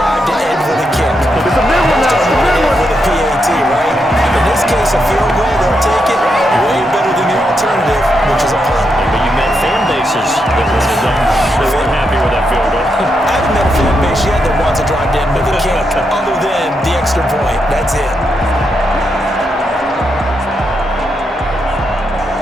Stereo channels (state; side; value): normal; both; correlation 0.82